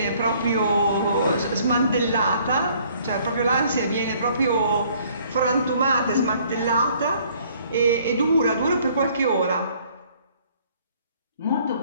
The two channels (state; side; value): inverted; both; correlation -0.60